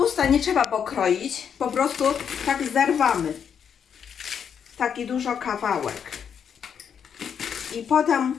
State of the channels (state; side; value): quieter; right; 7.7 dB